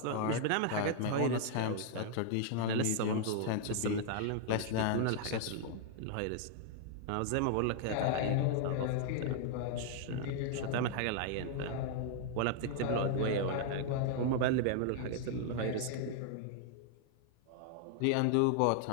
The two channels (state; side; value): different; both; correlation 0.00